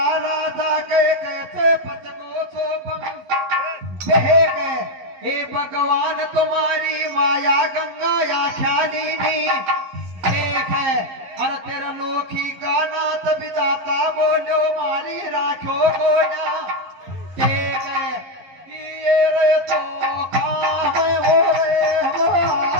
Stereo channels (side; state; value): left; late; 11 ms